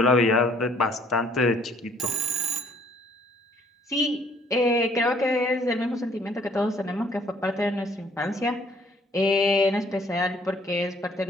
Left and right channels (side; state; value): both; normal; correlation 0.61